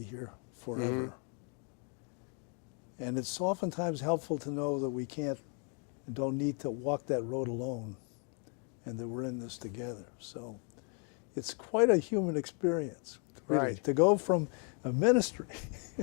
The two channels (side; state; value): right; quieter; 38.9 dB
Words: here forever. And it's oftentimes helpful to know that we can't and don't need to walk that road alone and that we're in this together. So it's quite a human experience, really, Right. to go from a ministry